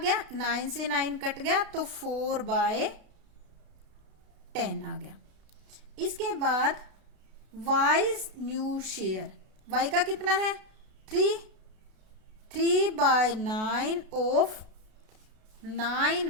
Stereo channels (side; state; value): left; late; 32 ms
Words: 9 से 9 कट गया, तो 4/10 आ गया। इसके बाद वाइज न्यू शेयर, वाई का कितना है? 3/9 ऑफ